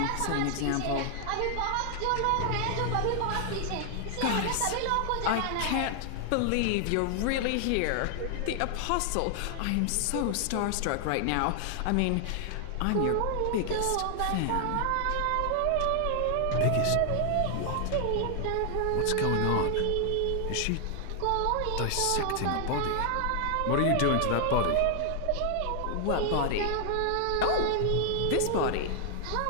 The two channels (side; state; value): both; different; correlation 0.00